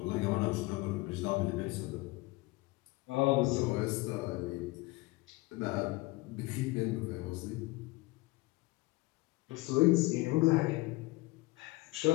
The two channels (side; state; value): right; quieter; 21.9 dB